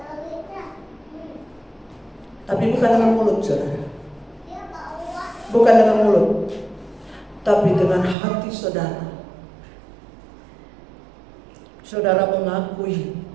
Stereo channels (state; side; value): drops out; left; at 8.2 s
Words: Tapi bukan dengan mulut, saudara. Bukan dengan mulut, tapi dengan hati saudara. Saudara mengakui